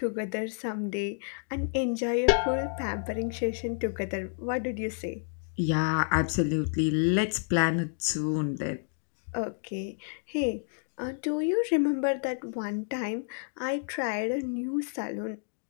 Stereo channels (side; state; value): right; silent; digital silence